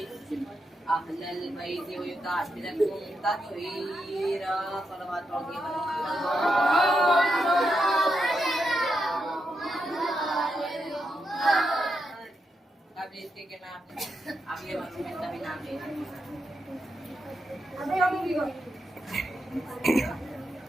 अहलल बैति व युतहिरकुम तत्हीरा। सलवात पढ़िए। अब इसके के मैं अगले वर्ग में सभी नाम ले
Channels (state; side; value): normal; both; correlation 0.84